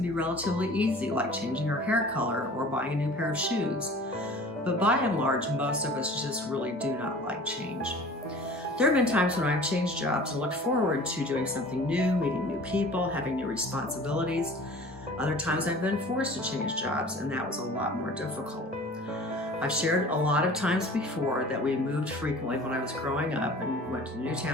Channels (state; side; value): normal; both; correlation 0.44